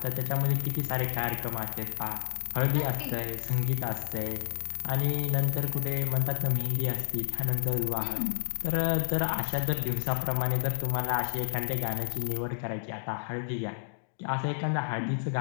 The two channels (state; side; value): silent; right; digital silence